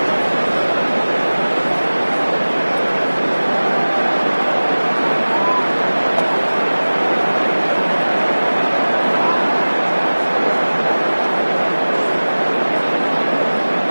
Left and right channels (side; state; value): both; inverted; correlation -1.00